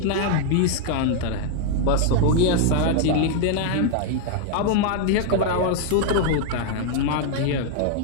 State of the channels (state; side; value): different; both; correlation 0.00